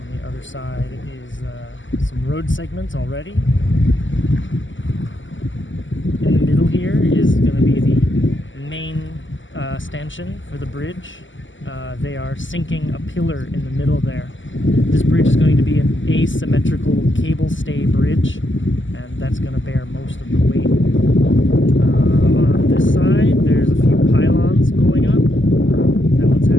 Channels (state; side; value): late; right; 0.55 ms